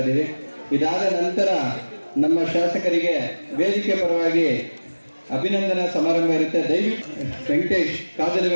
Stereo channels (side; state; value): both; inverted; correlation -1.00